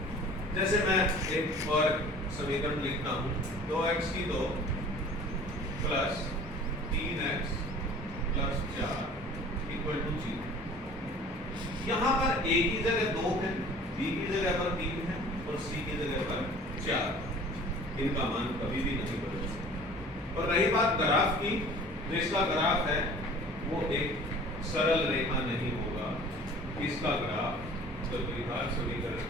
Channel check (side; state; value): both; normal; correlation 0.46